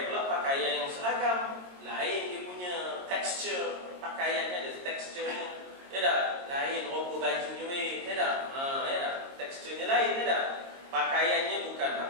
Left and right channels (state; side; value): late; left; 22 ms